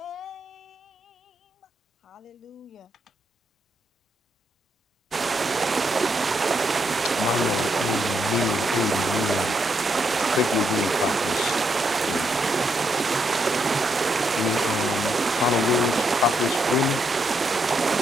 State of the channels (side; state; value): both; normal; correlation 0.78